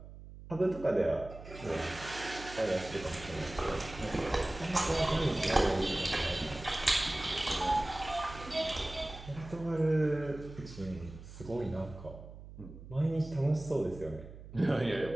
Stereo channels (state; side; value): noise; right; hum, 15 dB below the sound